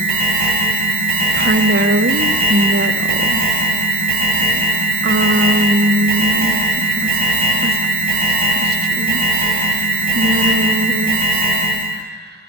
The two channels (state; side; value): normal; both; correlation 0.31